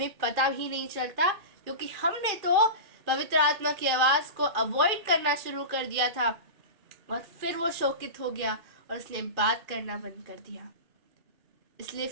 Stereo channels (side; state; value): left; late; 2.4 ms